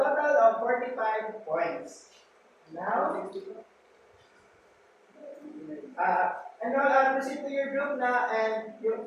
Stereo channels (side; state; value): both; identical; correlation 1.00